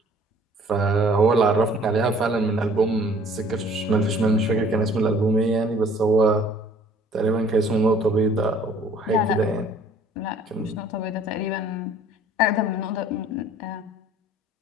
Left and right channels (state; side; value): normal; both; correlation 0.54